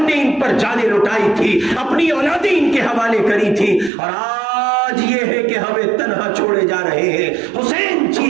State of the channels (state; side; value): drops out; left; at 3.9 s